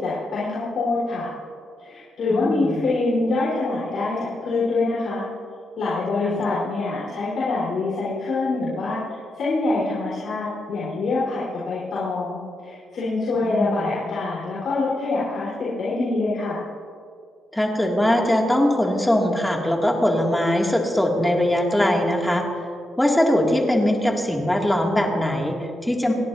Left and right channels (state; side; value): normal; both; correlation 0.87